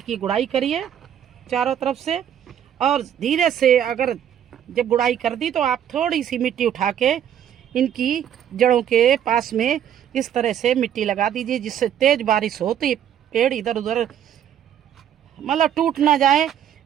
की गुड़ाई करिए चारों तरफ से। और धीरे से अगर जब गुड़ाई कर दी तो आप थोड़ी सी मिट्टी उठा के इनकी जड़ों के पास में इस तरह से मिट्टी लगा दीजिए, जिससे तेज बारिश हो तो ये पेड़ इधर उधर मतलब टूट ना जाए,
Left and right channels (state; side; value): quieter; left; 9.8 dB